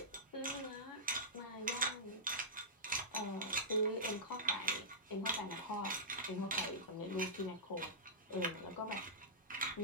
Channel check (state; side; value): normal; both; correlation -0.15